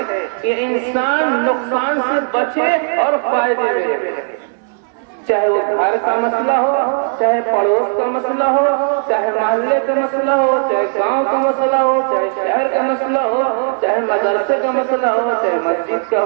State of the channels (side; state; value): left; silent; digital silence